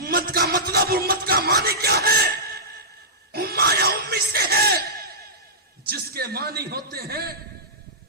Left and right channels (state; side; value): normal; both; correlation -0.16